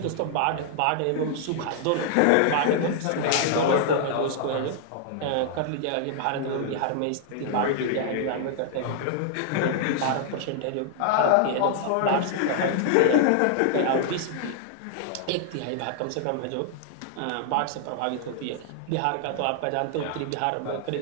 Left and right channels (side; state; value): both; different; correlation -0.01